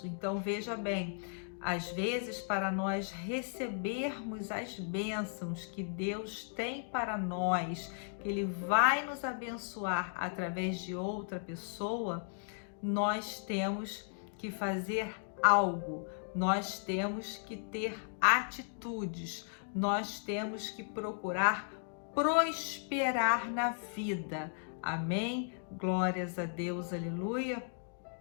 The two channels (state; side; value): silent; right; digital silence